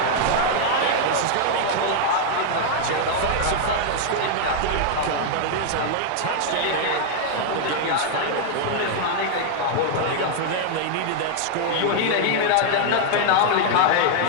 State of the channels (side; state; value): both; different; correlation 0.00